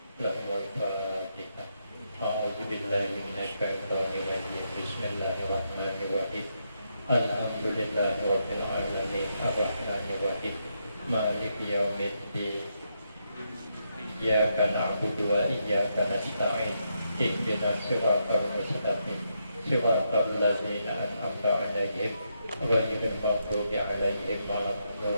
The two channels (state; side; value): inverted; both; correlation -0.81